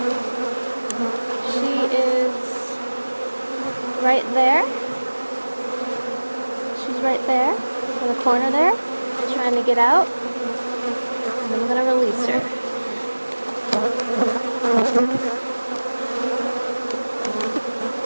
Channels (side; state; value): both; inverted; correlation -1.00